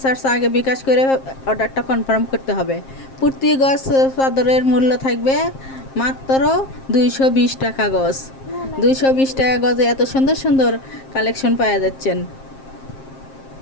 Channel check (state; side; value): late; right; 7.5 ms